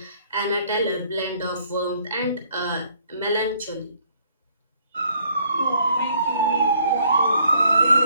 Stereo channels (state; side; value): inverted; both; correlation -0.65